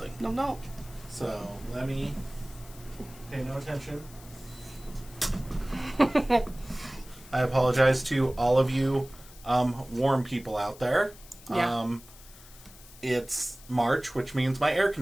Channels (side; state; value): left; noise; hiss, 21 dB below the sound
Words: No. So let me pay no attention. I apologize to all of you warm people out there. Yeah. It's March, which means my air